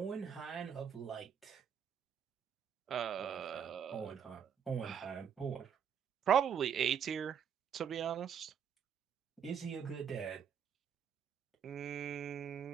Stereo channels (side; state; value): left; quieter; 8.0 dB